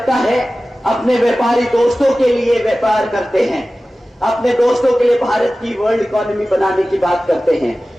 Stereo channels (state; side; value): normal; both; correlation 0.96